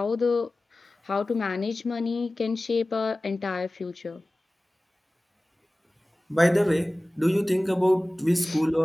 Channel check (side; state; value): both; normal; correlation 0.97